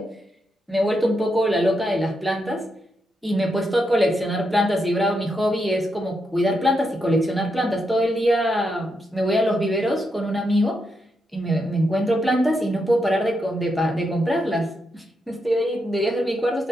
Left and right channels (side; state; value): both; normal; correlation 0.83